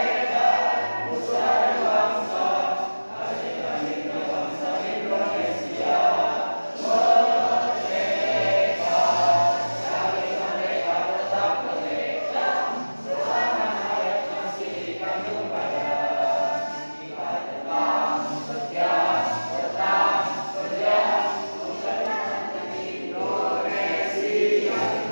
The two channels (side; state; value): both; inverted; correlation -1.00